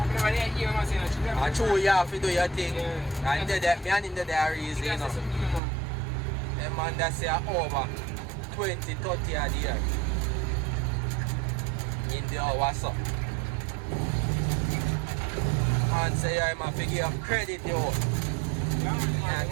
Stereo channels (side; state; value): left; drops out; at 5.6 s